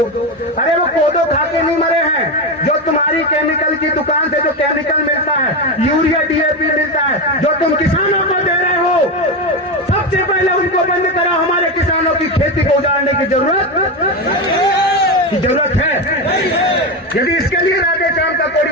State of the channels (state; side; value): normal; both; correlation 0.15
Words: अरे वो कोदो खा के नहीं मरे हैं, जो तुम्हारी केमिकल की दुकान से जो केमिकल मिलता है, यूरिया डीएपी मिलता है, जो तुम किसानों को दे रहे हो, सबसे पहले उनको बंद कराओ। हमारे किसानों की खेती को उजाड़ने की जरूरत है। यदि इसके लिए राधे श्याम का